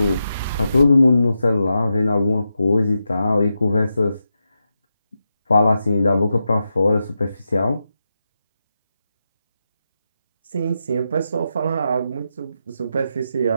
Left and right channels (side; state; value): both; inverted; correlation -0.87